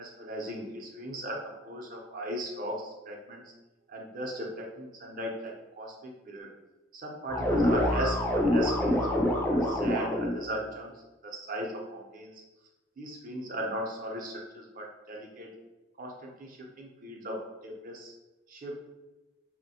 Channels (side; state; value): both; normal; correlation 0.55